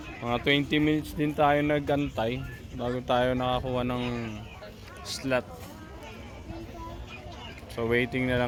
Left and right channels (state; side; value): identical; both; correlation 1.00